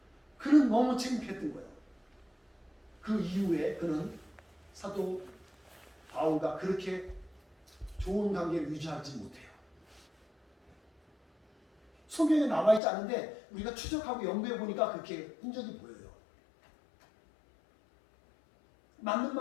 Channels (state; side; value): drops out; right; at 12.8 s